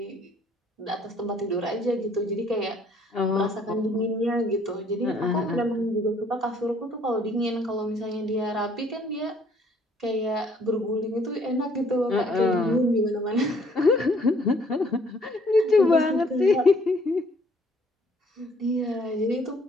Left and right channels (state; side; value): normal; both; correlation 0.62